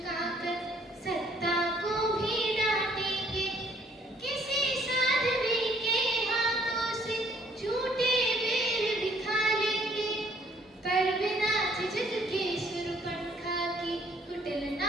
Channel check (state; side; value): normal; both; correlation 0.63